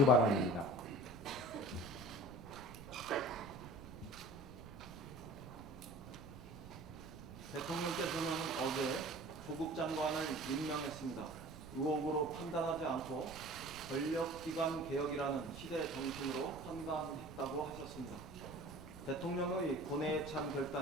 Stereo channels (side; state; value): right; noise; rumble, 15 dB below the sound